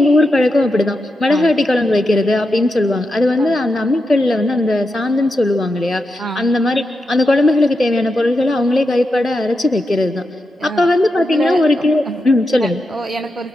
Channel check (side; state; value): both; normal; correlation 0.87